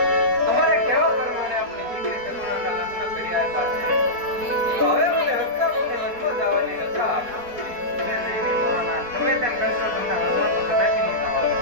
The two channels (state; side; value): late; left; 4.2 ms